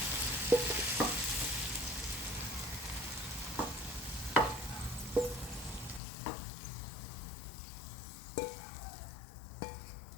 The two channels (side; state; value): right; drops out; at 6.0 s